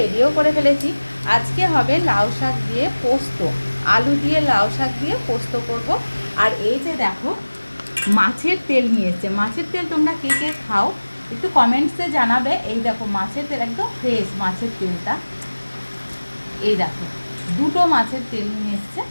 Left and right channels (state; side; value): inverted; both; correlation -1.00